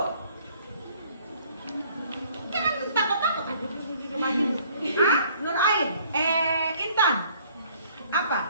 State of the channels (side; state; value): both; inverted; correlation -0.59